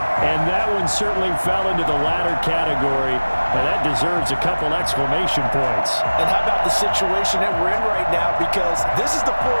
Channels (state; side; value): inverted; both; correlation -1.00